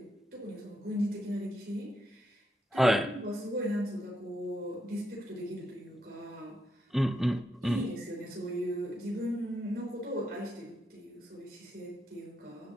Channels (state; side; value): normal; both; correlation 0.81